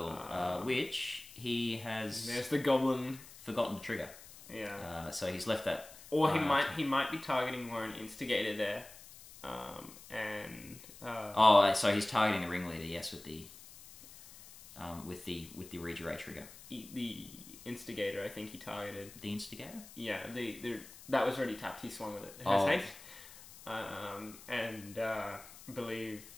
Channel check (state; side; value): noise; left; hiss, 18 dB below the sound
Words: which he has... There's the Goblin. Forgotten to trigger. Yeah. So he's left that... Or he might be targeting Warren Instigator there. So he's targeting the ringleader, yes, with the Regeray trigger. The Instigator, I think he targeted. The Instigator? Yeah, that was already tapped. He swung with it. It has haste. I believe